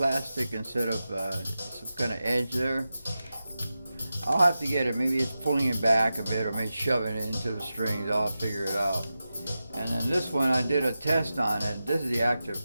instead of some kind of edge there. I'll have to get it. Maybe it's pulling it back a bit, or maybe shoving it into the strings. I'll figure it out. And then this one, I did a test on it. This is the active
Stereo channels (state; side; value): inverted; both; correlation -0.93